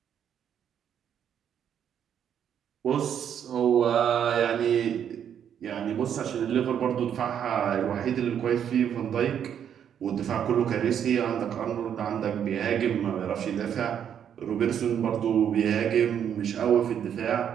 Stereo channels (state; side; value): quieter; left; 8.9 dB